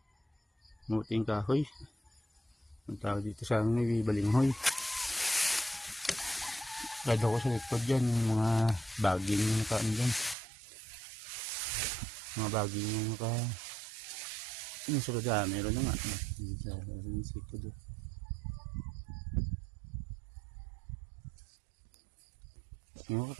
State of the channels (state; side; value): drops out; left; at 10.4 s